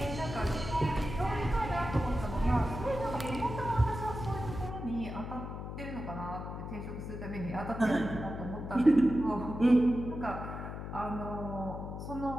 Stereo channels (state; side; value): noise; left; hum, 7 dB below the sound